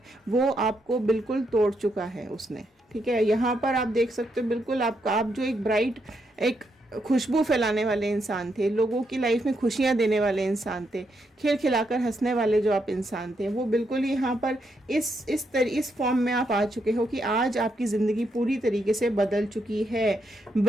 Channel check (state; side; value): normal; both; correlation 0.79